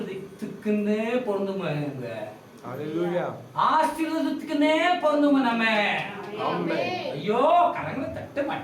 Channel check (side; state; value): both; identical; correlation 1.00